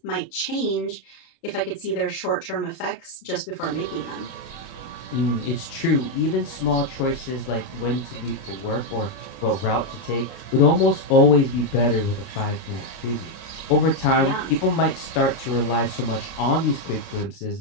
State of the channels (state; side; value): late; right; 29 ms